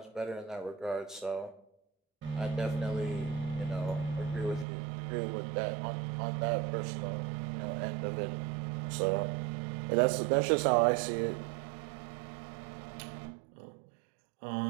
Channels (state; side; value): drops out; left; at 4.7 s